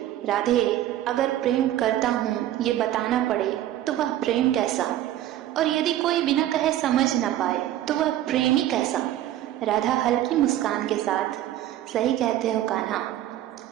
राधे, अगर प्रेम करता हूँ ये बताना पड़े, तो वह प्रेम कैसा? और यदि कोई बिना कहे समझ न पाए तो वह प्रेमी कैसा? राधा हल्की मुस्कान के साथ, सही कहते हो कान्हा,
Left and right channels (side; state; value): left; quieter; 13.0 dB